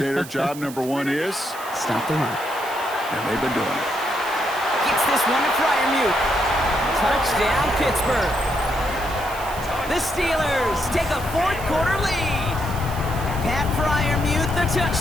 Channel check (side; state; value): right; noise; hiss, 15 dB below the sound